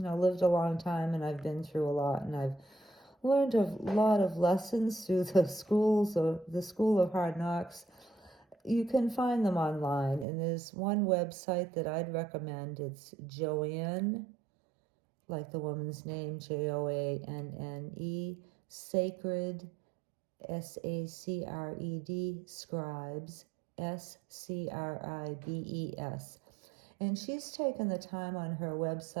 a long time, and I've been through a lot, and I've learned a lot of lessons through the School of Hard Knocks. You can find them online, and there's one website that I'd recommend. It's Joanne, like the woman's name, Joanne, Sacred, Sacred, Scribes, Scribes. And she's taken the time on her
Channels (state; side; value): drops out; left; at 10.2 s